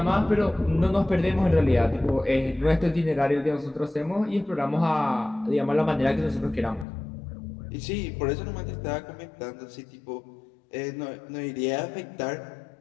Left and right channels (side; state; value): right; drops out; at 6.9 s